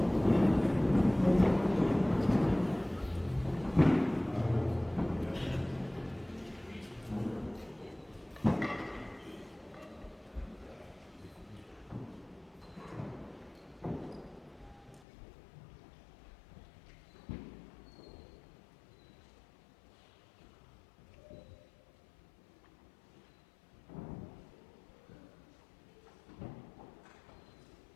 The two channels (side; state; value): right; drops out; at 15.1 s